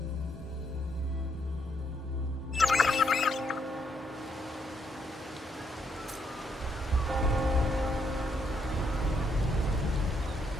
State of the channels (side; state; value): both; normal; correlation 0.75